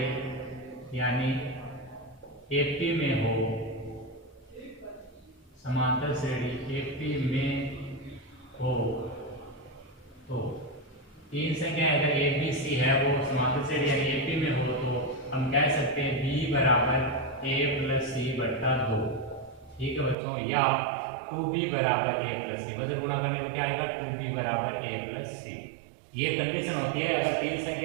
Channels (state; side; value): drops out; left; at 20.2 s